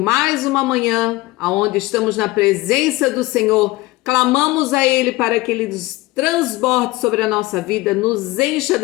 uma manhã, aonde estamos na presença do Senhor, clamamos a Ele para que Ele nos transborde sobre a nossa vida, nos encha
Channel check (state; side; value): quieter; right; 19.9 dB